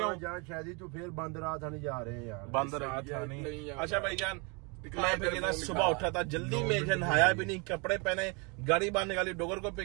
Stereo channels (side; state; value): left; quieter; 31.6 dB